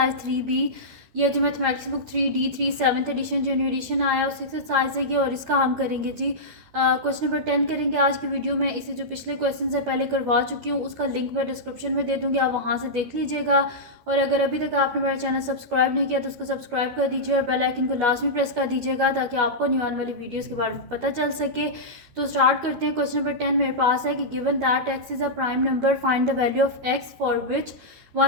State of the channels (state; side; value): late; left; 12 ms